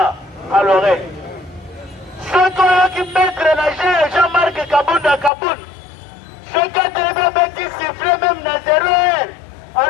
à l'oreille. Soki oyoki maître na Jean-Marc Kabunda Kaboun. Soki atelemi beti siffle même na 0 heure.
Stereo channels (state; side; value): drops out; right; at 5.3 s